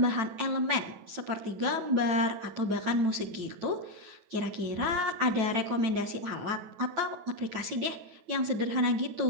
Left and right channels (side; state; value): left; late; 9.1 ms